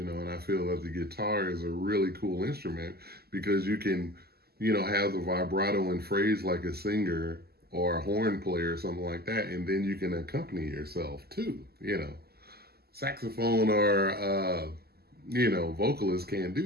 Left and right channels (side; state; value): left; late; 0.46 ms